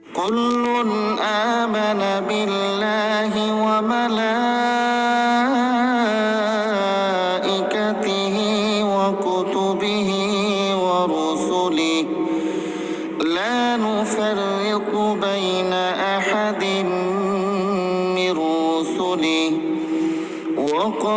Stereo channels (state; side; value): identical; both; correlation 1.00